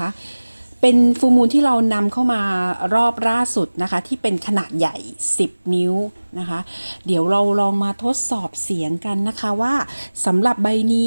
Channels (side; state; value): both; inverted; correlation -1.00